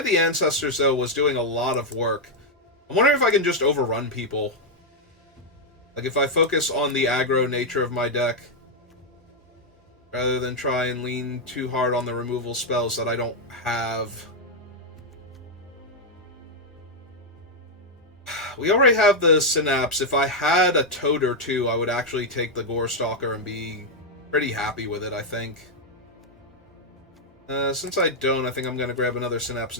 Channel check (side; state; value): both; normal; correlation -0.01